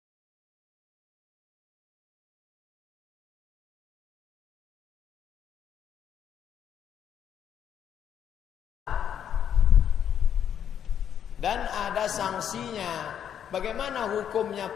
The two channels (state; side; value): quieter; right; 9.1 dB